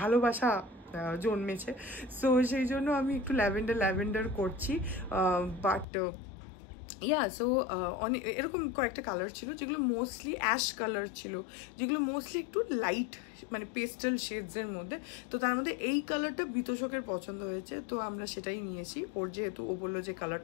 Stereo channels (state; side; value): drops out; right; at 5.9 s